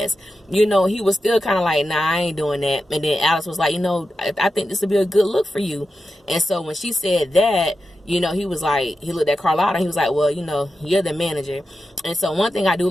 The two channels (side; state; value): both; normal; correlation 0.90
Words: He was still kind of like, nah, I ain't doing that. And then Alex was like, I think this would be a good look for you. And so when she said that, he was like, he looked at Carlotta and he was like, well, you're the manager. And so one thing I do